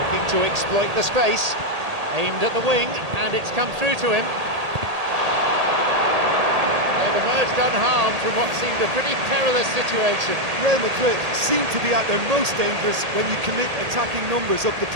to exploit the space. Aimed at the wing, and it's come through to him. Emerged unharmed from what seemed a pretty perilous situation. Real Madrid seem to be at their most dangerous when you commit attacking numbers up the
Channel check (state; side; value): late; left; 1.8 ms